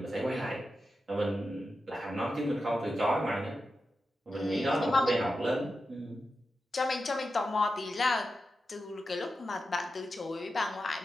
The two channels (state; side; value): normal; both; correlation 0.90